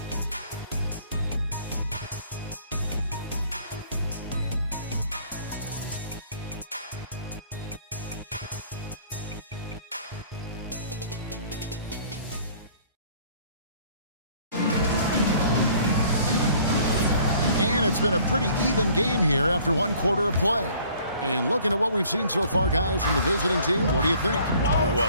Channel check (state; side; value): inverted; both; correlation -0.56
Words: And it's been a pretty even game here after one quarter of play. And looking at what we've seen so far, guys, from the visiting team, what do you think?